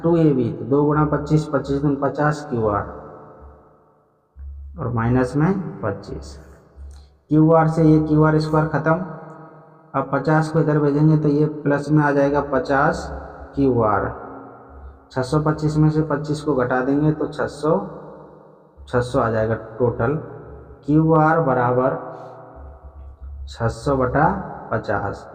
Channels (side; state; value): both; identical; correlation 1.00